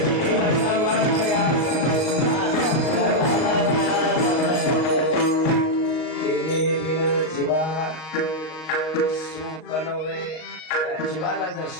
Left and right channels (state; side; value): late; right; 38 ms